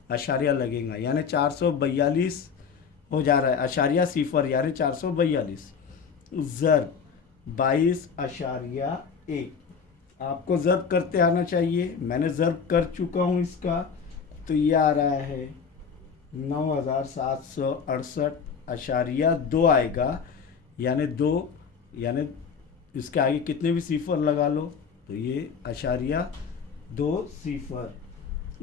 अशारिया लगेगा, यानी 442 हो जा रहा है, अशारिया सिफर यानी 442 ज़र 22.1। आपको ज़र्ब करते आना चाहिए, मैंने ज़र्ब कर चुका हूँ इसका, तो ये आ रहा है 9768.2 आएगा, यानी 2 यानी इसके आगे कितने भी सिफर लगा लो तो ये अशारिया 2 सिफर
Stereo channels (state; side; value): quieter; right; 6.2 dB